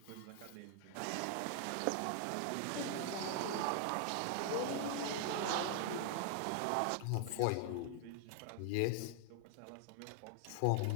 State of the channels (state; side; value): different; both; correlation 0.00